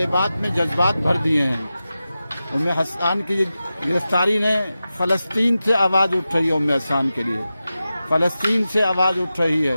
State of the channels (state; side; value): inverted; both; correlation -0.93